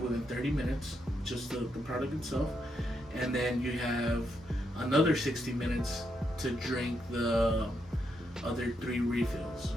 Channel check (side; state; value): both; normal; correlation 0.80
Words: within 30 minutes, just the product itself, and then you have another 60 minutes to drink the other 3 refills